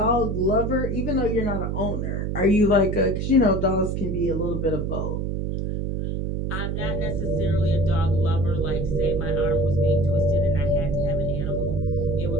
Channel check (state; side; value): noise; right; hum, 2 dB below the sound